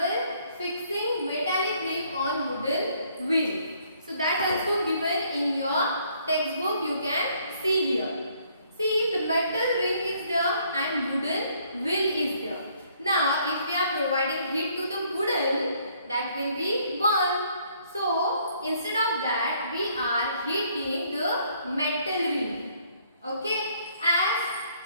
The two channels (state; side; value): inverted; both; correlation -0.65